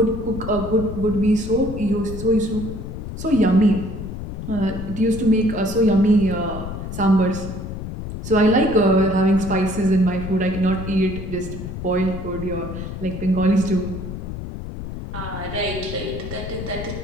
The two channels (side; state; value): left; noise; rumble, 8 dB below the sound